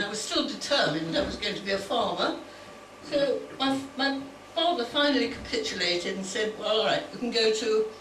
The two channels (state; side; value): identical; both; correlation 1.00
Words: I was still determined I was going to be a farmer. So my father finally capitulated and said, well, all right, you can go to